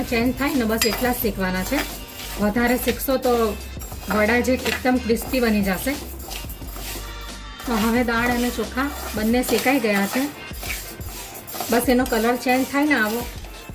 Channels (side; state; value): both; identical; correlation 1.00